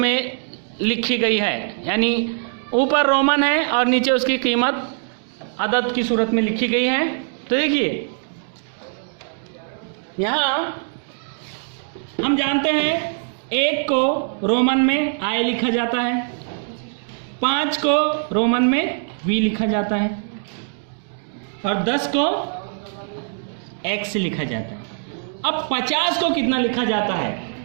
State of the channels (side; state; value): left; silent; digital silence